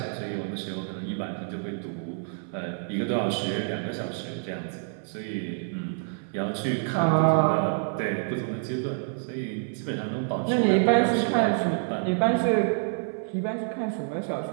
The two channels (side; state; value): left; silent; 55 dB below the other